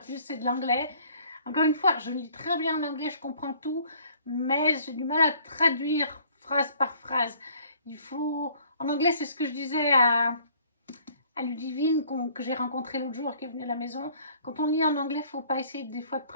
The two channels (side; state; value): both; inverted; correlation -0.57